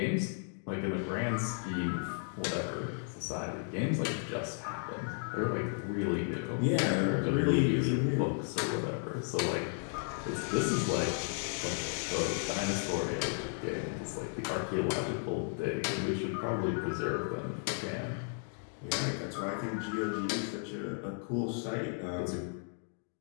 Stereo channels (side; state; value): right; silent; 55 dB below the other